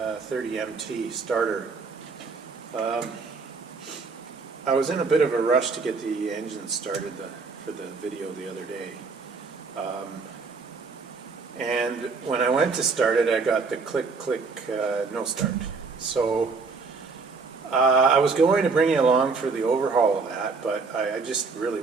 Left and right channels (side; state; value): left; quieter; 4.5 dB